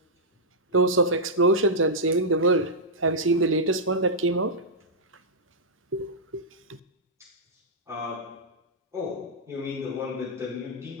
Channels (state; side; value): normal; both; correlation -0.10